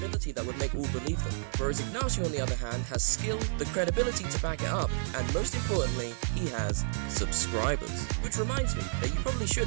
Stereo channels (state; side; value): silent; left; digital silence